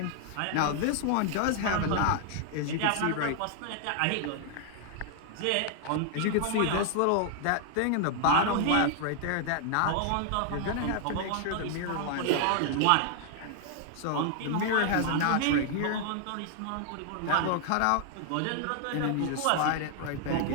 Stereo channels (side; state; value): both; different; correlation 0.00